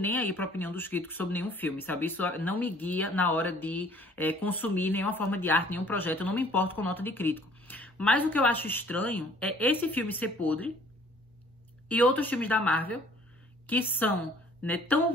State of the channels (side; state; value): both; normal; correlation 0.56